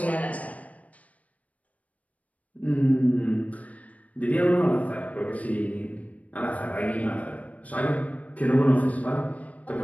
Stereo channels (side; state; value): right; late; 0.069 ms